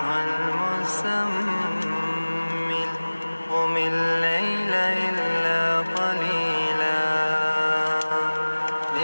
المزمل قم الليل إلا قليلا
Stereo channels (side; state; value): both; inverted; correlation -1.00